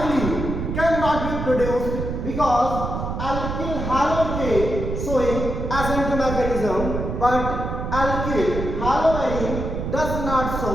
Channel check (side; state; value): right; noise; rumble, 4 dB below the sound